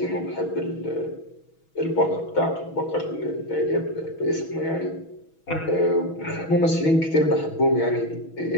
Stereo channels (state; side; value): late; right; 6.2 ms